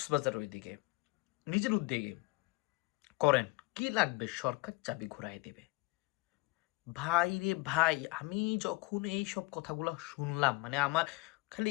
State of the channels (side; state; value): right; quieter; 22.9 dB